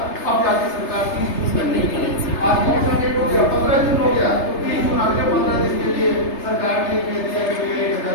अब जाके सरकार 30 जून तक नहीं करेगी। आज कौन सा डेट हो गया, 15 जून हो गया, तो 30 जून अगले 15 दिन के लिए सरकार ने कह दिया कि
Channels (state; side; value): late; right; 3.3 ms